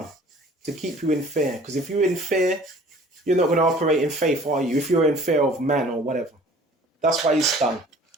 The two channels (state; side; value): normal; both; correlation 0.50